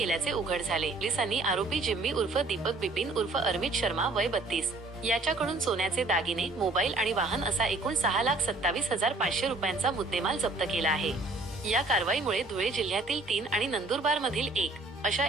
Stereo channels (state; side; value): quieter; left; 3.1 dB